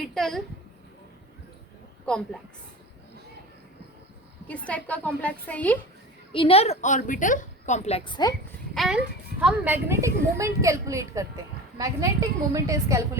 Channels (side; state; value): both; normal; correlation 0.33